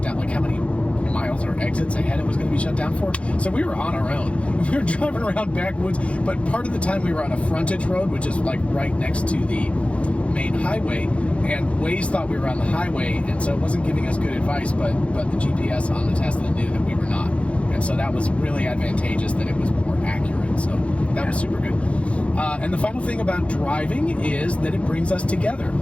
down, like how many miles or exits ahead it was going to be shut down for. So we were on our own. We were driving around backwoods, but part of the time we were on a frontage road, which is like right next to the main highway, and Waze thought we were on the highway, and so it wasn't giving us good advice, but the GPS on the Tesla knew that we were not. And so that was really advantageous, that it was more accurate. So that was super good. And the final thing about driving is that it brings us together.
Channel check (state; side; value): late; right; 0.062 ms